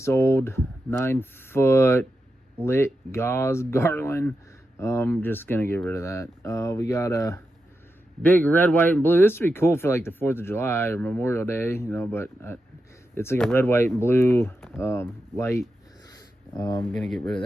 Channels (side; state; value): both; normal; correlation 0.88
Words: old 9-foot lit gauze garland. I'm just gonna get rid of that. We got a big red, white, and blue. This would be cool for like the 4th of July or Memorial Day, but it's like a red, white, and blue light. I'm gonna get rid of